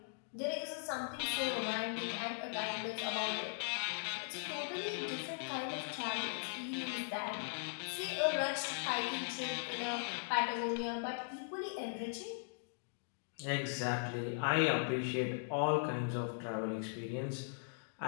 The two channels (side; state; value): right; silent; digital silence